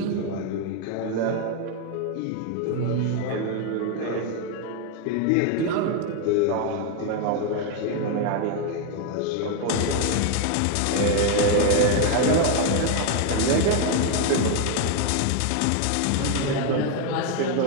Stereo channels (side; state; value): both; different; correlation 0.01